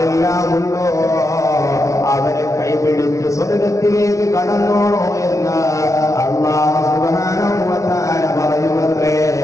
ഉണ്ടോ അവരെ കൈപിടിച്ച് സ്വർഗത്തിലേക്ക് കടന്നോളോ എന്ന് അല്ലാഹു സുബ്ഹാനഹു വ തആല പറയുമത്രേ.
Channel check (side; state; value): right; late; 0.15 ms